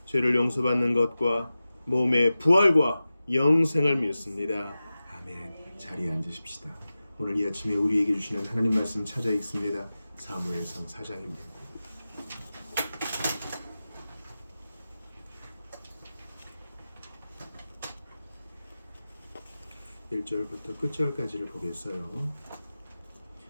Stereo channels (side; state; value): both; inverted; correlation -0.95